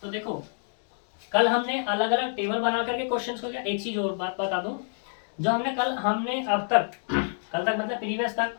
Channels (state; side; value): silent; right; 60 dB below the other